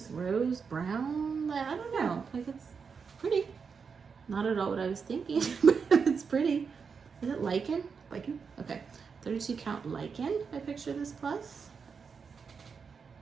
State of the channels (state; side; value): quieter; left; 5.8 dB